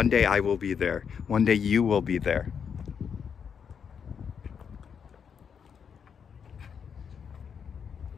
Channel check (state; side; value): quieter; right; 7.0 dB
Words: day I will be there. One day you will be there.